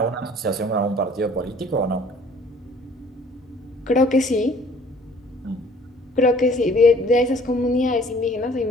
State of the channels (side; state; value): both; normal; correlation 0.55